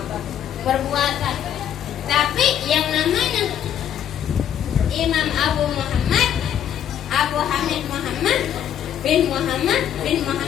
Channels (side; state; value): right; quieter; 9.9 dB